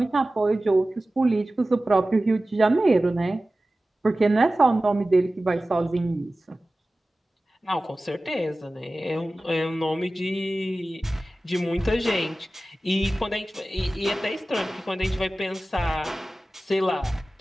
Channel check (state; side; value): normal; both; correlation 0.96